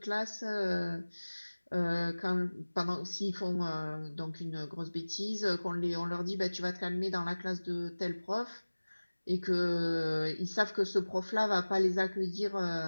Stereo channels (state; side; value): inverted; both; correlation -1.00